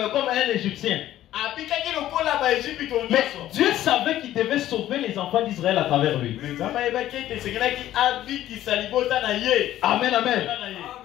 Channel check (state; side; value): quieter; right; 13.3 dB